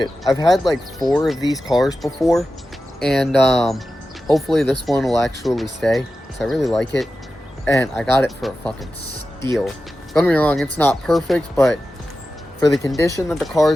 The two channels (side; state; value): both; normal; correlation 0.93